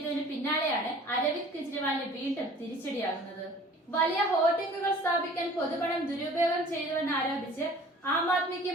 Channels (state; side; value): normal; both; correlation 0.48